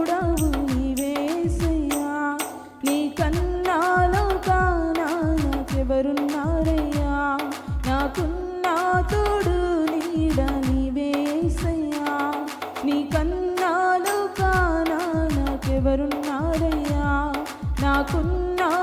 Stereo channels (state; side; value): identical; both; correlation 1.00